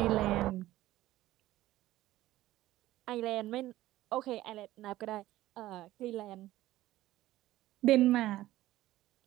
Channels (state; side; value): quieter; left; 15.6 dB